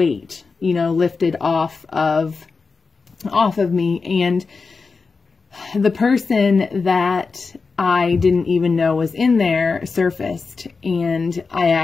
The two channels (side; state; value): right; quieter; 4.6 dB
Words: you know, lifted off of me. And the person that I didn't even know was in there surfaced, and I